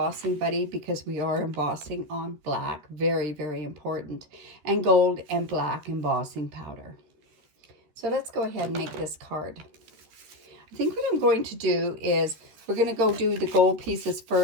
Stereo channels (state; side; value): late; left; 13 ms